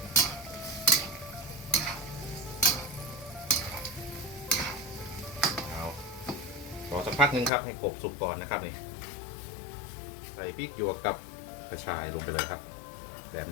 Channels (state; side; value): drops out; right; at 7.5 s